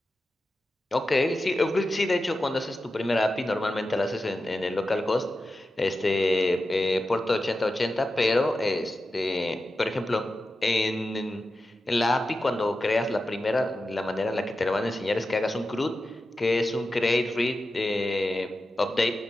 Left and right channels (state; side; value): normal; both; correlation 0.92